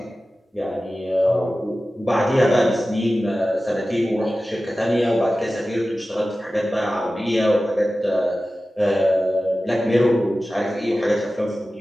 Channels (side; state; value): both; normal; correlation 0.95